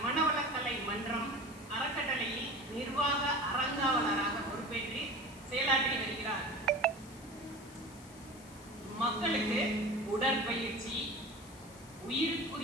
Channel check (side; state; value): left; noise; hiss, 21 dB below the sound